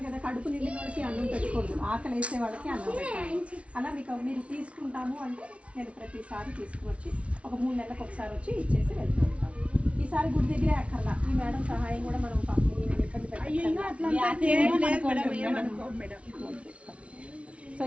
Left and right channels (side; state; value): left; late; 0.062 ms